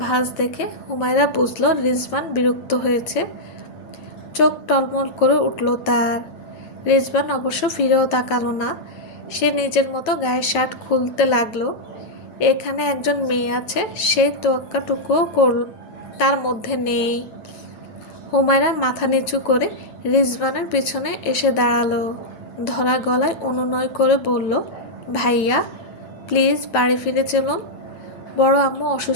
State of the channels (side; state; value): right; late; 9.1 ms